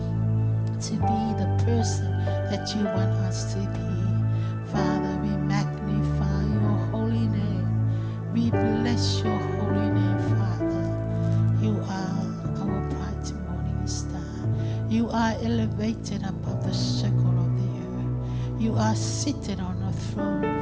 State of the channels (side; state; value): both; identical; correlation 1.00